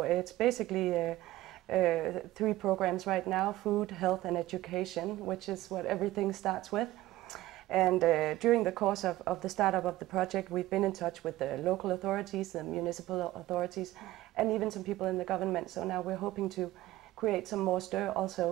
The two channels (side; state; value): left; quieter; 16.2 dB